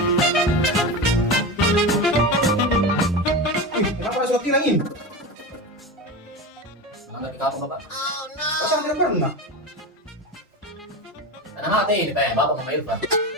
Kenapa ada surat tilang ini? Melanggar di kamu, Bapak. Pasang tidak pernah. Karena mati ini kayak Bapak sama Irfan.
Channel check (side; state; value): both; normal; correlation 0.23